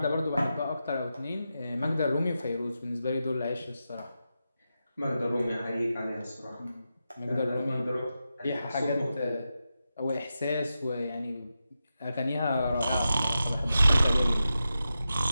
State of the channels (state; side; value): inverted; both; correlation -0.90